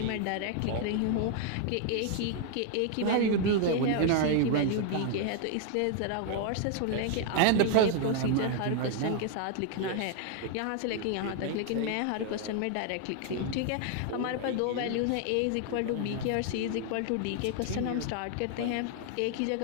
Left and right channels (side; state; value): both; different; correlation 0.00